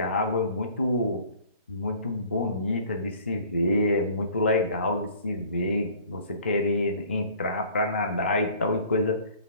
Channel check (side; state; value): both; inverted; correlation -0.52